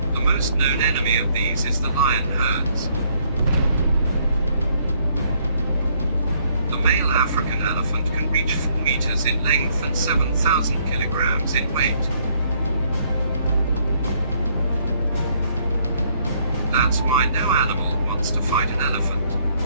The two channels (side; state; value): both; inverted; correlation -0.67